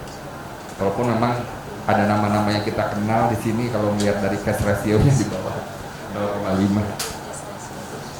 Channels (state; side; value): identical; both; correlation 1.00